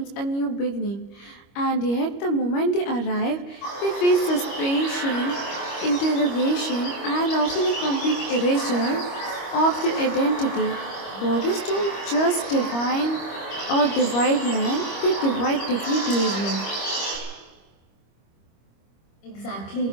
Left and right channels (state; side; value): late; right; 25 ms